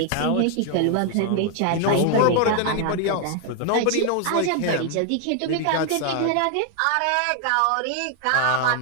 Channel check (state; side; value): different; both; correlation 0.00